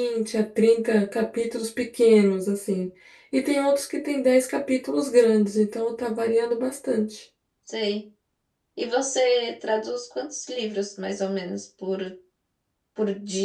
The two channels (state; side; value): identical; both; correlation 1.00